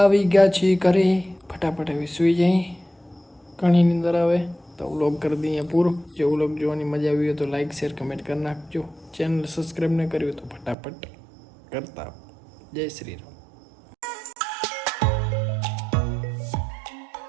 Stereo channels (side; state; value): left; drops out; at 10.8 s